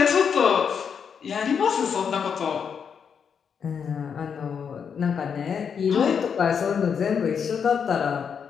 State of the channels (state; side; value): quieter; right; 6.9 dB